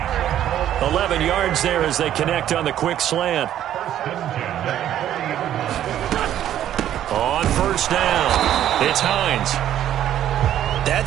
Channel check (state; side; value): quieter; left; 11.4 dB